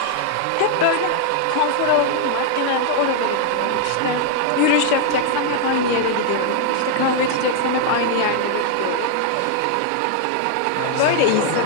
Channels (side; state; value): both; different; correlation 0.00